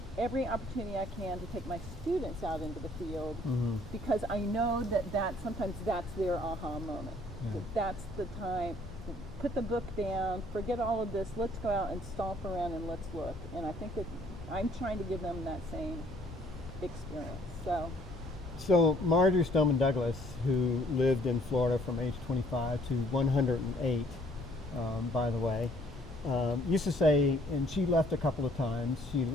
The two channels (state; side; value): normal; both; correlation 0.61